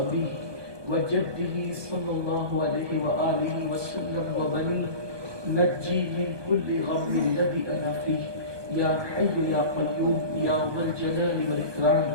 وجده صلى الله عليه وآله وسلم وبنيه نجي من كل غم الذي أنا فيه يا حي يا قيوم يا ذا الجلال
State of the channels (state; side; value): late; left; 1.2 ms